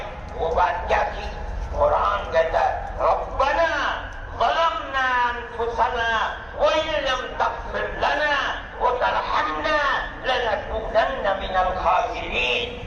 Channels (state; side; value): identical; both; correlation 1.00